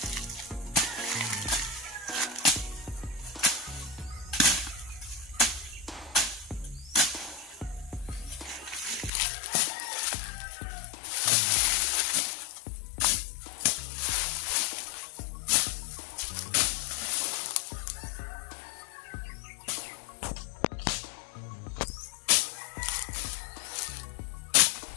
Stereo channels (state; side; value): drops out; right; at 9.1 s